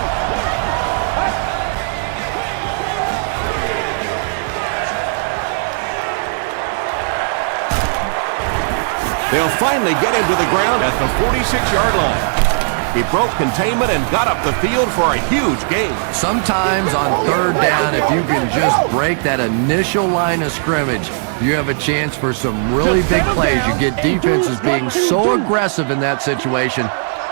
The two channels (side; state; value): left; silent; 68 dB below the other